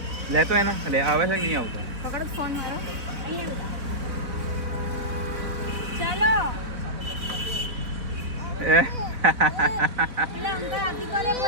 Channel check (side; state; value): left; late; 4.0 ms